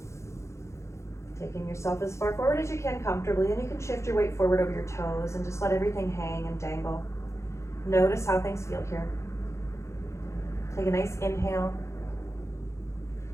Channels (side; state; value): right; late; 0.14 ms